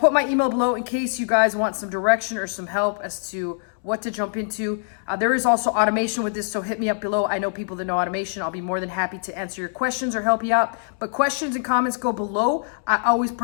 my email below in case you guys want some direction or some help as to what to jump into. There is also automation with this, so hit me up below. I know people that know automation. I'll be more than happy to answer your questions or help you out. But questions and comments go below. I always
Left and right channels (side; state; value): right; silent; digital silence